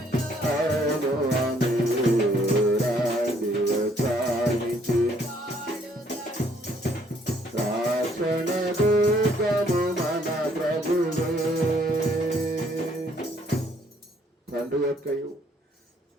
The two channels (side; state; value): both; normal; correlation 0.65